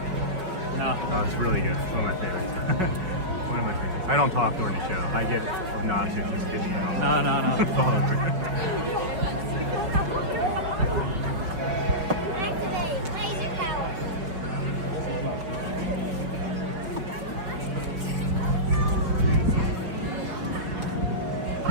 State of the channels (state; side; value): late; left; 5.3 ms